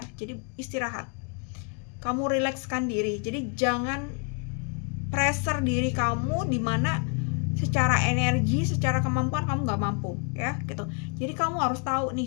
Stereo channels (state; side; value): quieter; right; 37.5 dB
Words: Jadi istirahat, kamu rilekskan diri. Jadi jangan pressure diri kamu dimana secara energi, secara kemampuan kamu nggak mampu ya gitu. Jadi kamu harus tahu